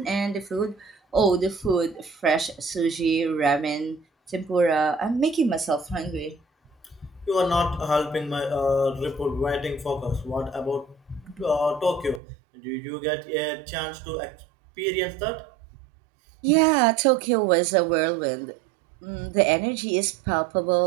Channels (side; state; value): left; drops out; at 12.2 s